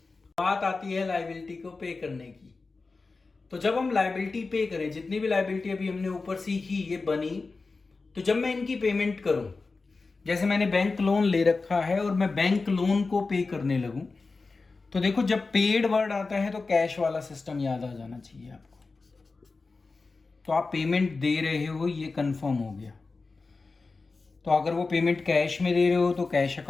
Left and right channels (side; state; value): right; quieter; 4.0 dB